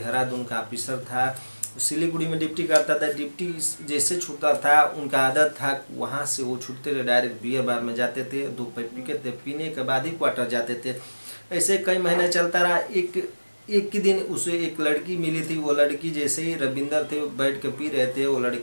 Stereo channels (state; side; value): inverted; both; correlation -1.00